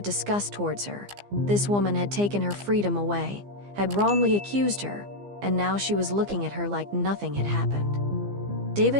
disgust towards her. This woman had taken her freedom away, had wrongly accused her, and now she was looking at her like nothing had happened.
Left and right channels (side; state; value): left; late; 15 ms